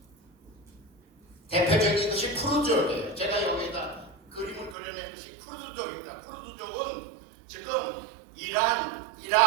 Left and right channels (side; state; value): left; drops out; at 4.8 s